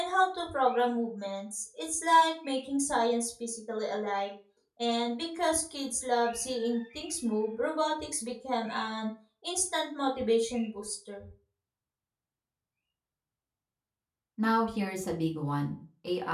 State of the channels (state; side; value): identical; both; correlation 1.00